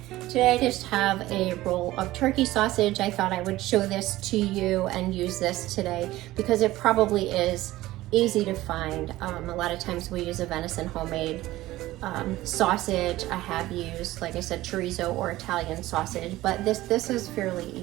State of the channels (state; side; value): quieter; left; 16.9 dB